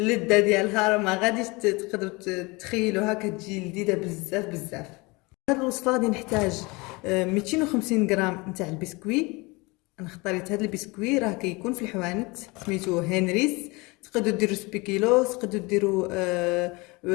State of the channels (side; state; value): right; quieter; 25.5 dB